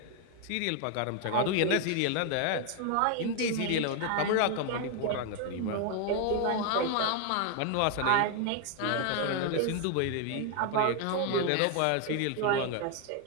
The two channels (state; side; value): different; both; correlation 0.00